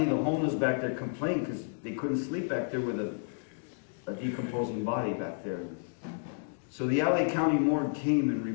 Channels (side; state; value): right; silent; digital silence